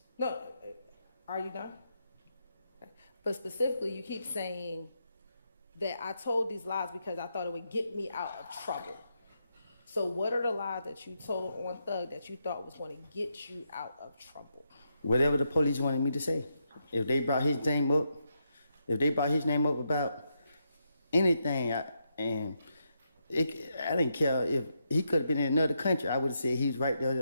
No, are you done? Okay. But specifically, you keep saying that I told these lies because I thought it would get me out of trouble. So what are the lies that you told on Thug that you thought was going to get you out of trouble? Whatever the police wanted me to say. If they brought his name up, about anything, I didn't care if he could have been in another country. I would have said he was right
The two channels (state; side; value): inverted; both; correlation -0.82